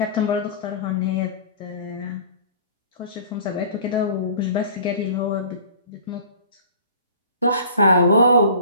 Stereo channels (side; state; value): both; inverted; correlation -0.45